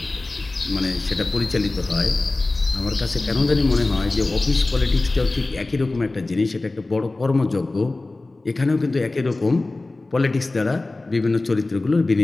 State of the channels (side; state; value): right; quieter; 3.1 dB